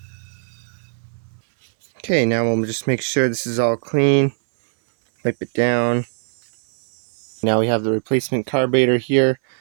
Okay, now we'll just make sure this is all clean. Wipe it down. Now we have the replacement carburetor here.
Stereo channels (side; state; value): left; silent; 64 dB below the other